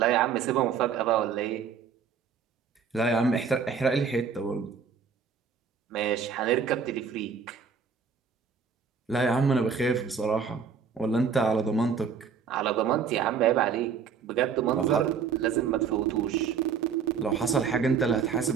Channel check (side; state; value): left; quieter; 6.3 dB